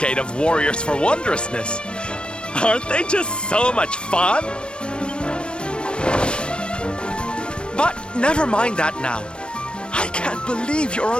of warriors for wondrousness. Aren't they just so much fun? But never mind that now. I can't believe you're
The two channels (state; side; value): late; right; 0.056 ms